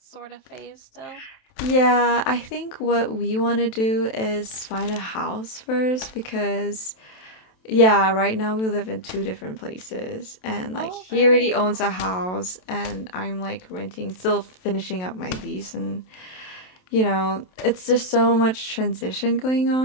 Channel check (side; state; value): right; late; 27 ms